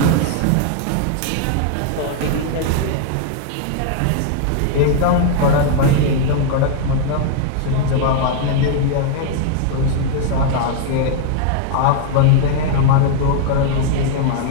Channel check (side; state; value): both; different; correlation 0.00